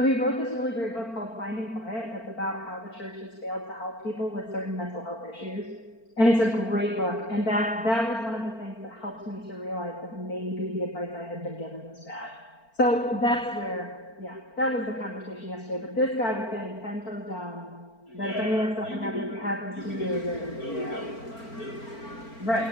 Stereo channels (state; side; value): late; right; 4.4 ms